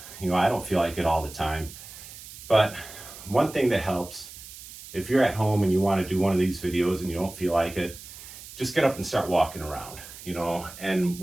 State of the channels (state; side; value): noise; right; hiss, 15 dB below the sound